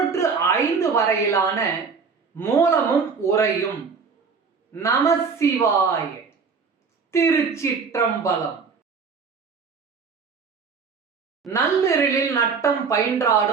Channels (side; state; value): left; quieter; 5.4 dB